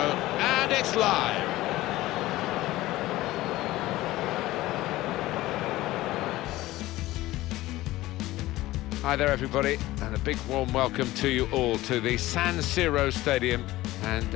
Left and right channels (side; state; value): right; quieter; 17.1 dB